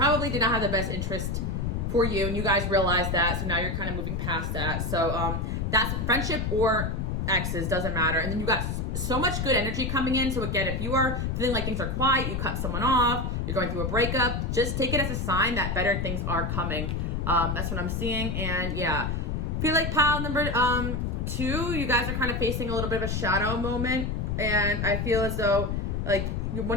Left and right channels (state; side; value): noise; left; rumble, 1 dB below the sound